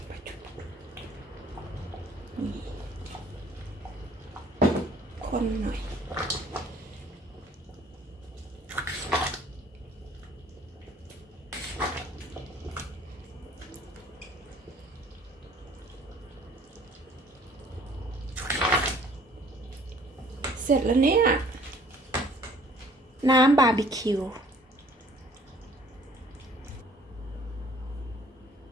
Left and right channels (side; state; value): both; normal; correlation 0.55